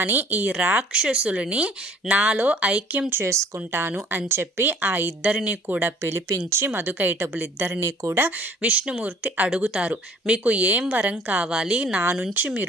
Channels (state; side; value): normal; both; correlation 0.54